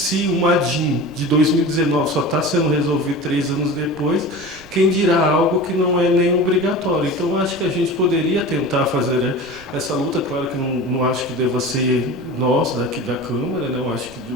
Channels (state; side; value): noise; right; rumble, 22 dB below the sound